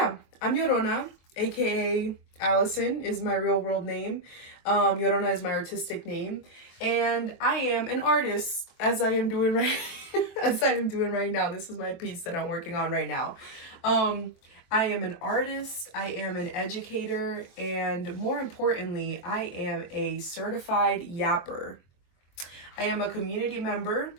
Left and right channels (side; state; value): right; late; 23 ms